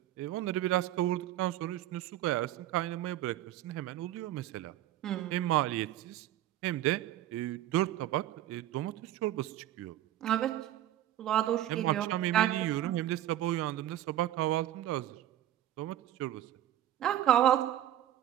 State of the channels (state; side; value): quieter; left; 12.9 dB